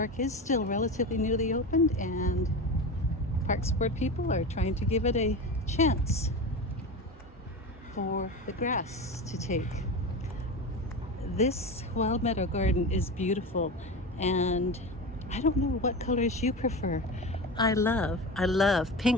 is still relatively newly opened and Parks Board people are trying to give it a chance for the grass to take. This wild meadow garden is beautiful, and I don't know what colors you prefer. I love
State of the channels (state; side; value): normal; both; correlation 0.25